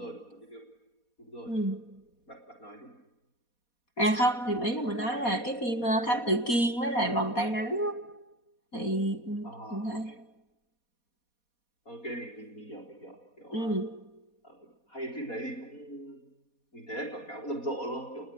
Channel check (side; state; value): right; late; 4.2 ms